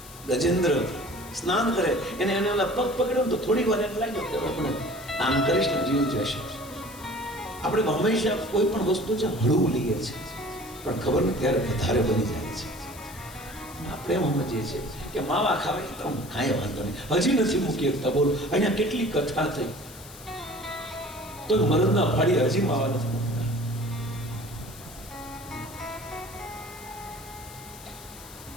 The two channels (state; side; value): noise; left; hiss, 17 dB below the sound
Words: ગજેન્દ્ર સ્નાન કરે, એને ઓલા પગ પકડ્યો તો થોડી વાર એમ લાગ્યો કે આપણે આમ કરીશ ને જીવ જશે. આપણે હંમેશા કોઈ પણ વસ્તુ છે હળવું લઈએ છીએ, પણ ખબર નથી ત્યારે વધારે બની જાય છે. આપણે એમ સમજીએ છીએ કે માવા ખાવાય તો કાંઈ વાંધો નહીં, હજી નથી મૂકી શકતા. બોલો, અહીંયા કેટલી કથા થઈ તો મરદના ફાડી હજી માવા નથી મૂકતા.